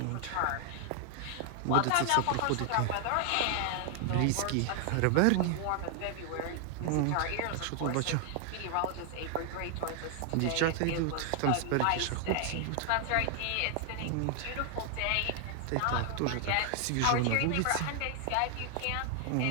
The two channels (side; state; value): both; different; correlation 0.00